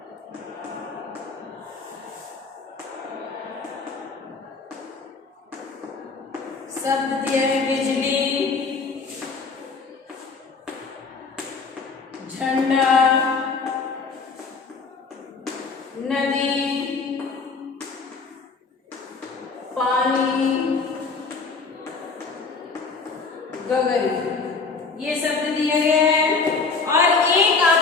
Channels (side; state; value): right; quieter; 4.6 dB